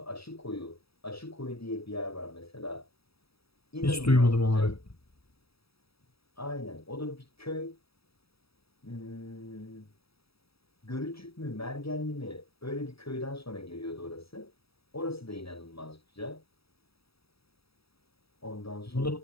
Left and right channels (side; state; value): right; late; 0.77 ms